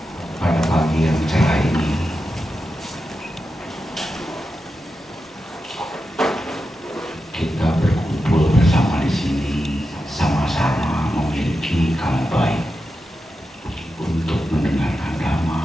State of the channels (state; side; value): normal; both; correlation 0.89